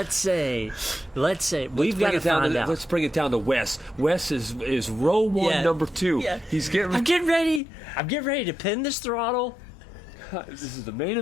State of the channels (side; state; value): right; drops out; at 7.6 s